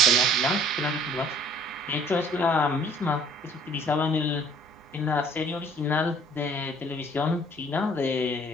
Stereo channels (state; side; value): normal; both; correlation 0.55